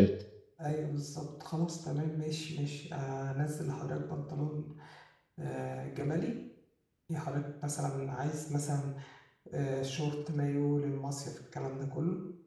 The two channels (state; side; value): identical; both; correlation 1.00